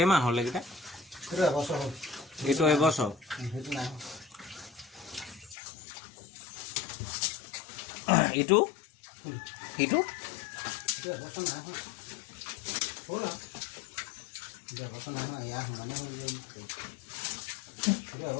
হ'ল এইকেইটা? এইটো এবছৰ। ইটো ইটো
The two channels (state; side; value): drops out; right; at 5.6 s